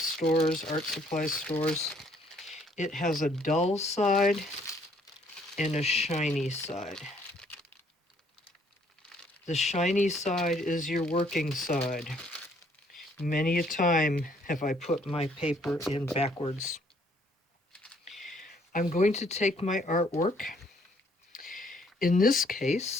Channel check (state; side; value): normal; both; correlation 0.65